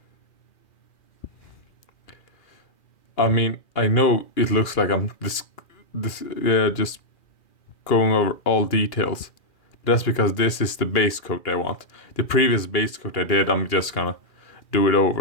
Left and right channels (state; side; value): late; right; 2.4 ms